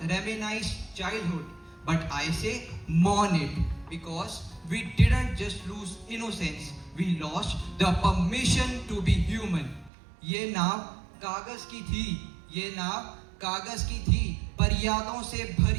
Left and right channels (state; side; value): drops out; left; at 9.9 s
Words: reminisce childhood, but I say mourn it because we didn't just lose innocence, we lost the permission to be human. ये नाव कागज की थी, ये नाव कागज की थी, पर यादों से